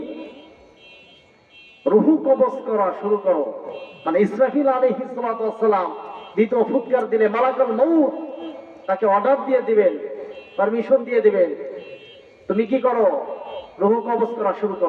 রূহ কবজ করা শুরু করো। মানে ইসরাফিল আলাইহিস সালাতু ওয়াস সালাম দ্বিতীয় ফুৎকার দিলে মালাকুল মউত তাকে অর্ডার দিয়ে দিবেন, পারমিশন দিয়ে দিবেন, তুমি কি করো? রূহ কবজ করা শুরু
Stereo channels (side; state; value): both; identical; correlation 1.00